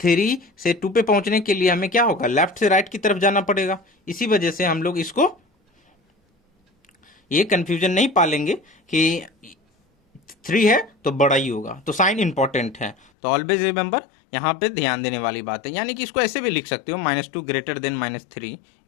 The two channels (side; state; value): right; drops out; at 13.1 s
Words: से 2 पे पहुंचने के लिए हमें क्या होगा, लेफ्ट से राइट की तरफ जाना पड़ेगा। इसी वजह से हम लोग इसको ये कंफ्यूजन नहीं पालेंगे कि 3 है तो बड़ा ही होगा। तो साइन इंपॉर्टेंट है, तो ऑलवेज रिमेंबर, यहाँ पे ध्यान देने वाली बात है। यानी कि इसको ऐसे भी लिख सकते हो, -2 > -3,